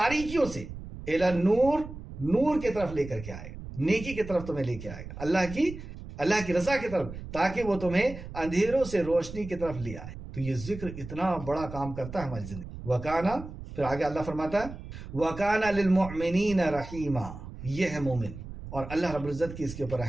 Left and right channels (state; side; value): noise; right; rumble, 12 dB below the sound